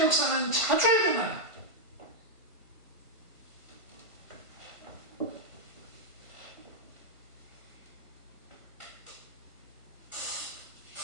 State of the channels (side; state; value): left; late; 1.5 ms